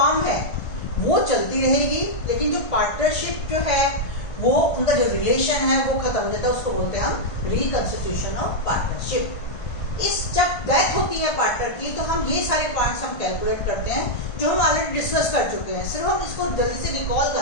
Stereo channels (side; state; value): right; late; 1.5 ms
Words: है वो चलती रहेगी, लेकिन जो पार्टनरशिप जो है वो उनका जो रिलेशन है वो खत्म हो जाता है, उसको बोलते हैं हम रिकंस्टिट्यूशन ऑफ पार्टनरशिप। इस जब डेथ होती है पार्टनर की तो हम ये सारे पॉइंट्स हम कैलकुलेट करते हैं जो हम ऑलरेडी डिस्कस कर चुके हैं, सिर्फ हम इसको जल्दी से रिकॉल